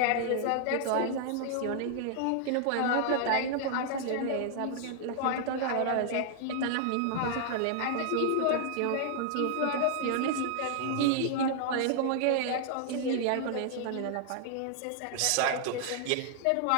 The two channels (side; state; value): both; different; correlation 0.00